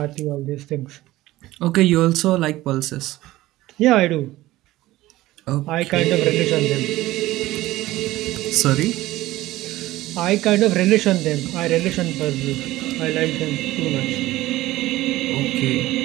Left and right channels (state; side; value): quieter; left; 16.9 dB